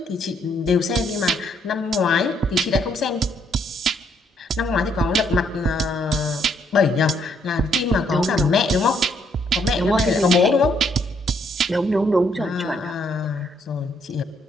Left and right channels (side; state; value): both; normal; correlation 0.71